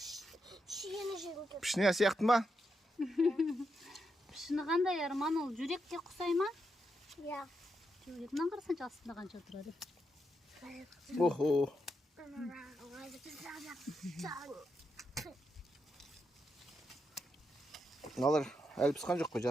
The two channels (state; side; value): normal; both; correlation 0.83